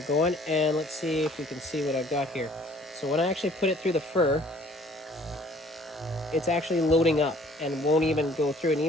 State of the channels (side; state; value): both; normal; correlation 0.57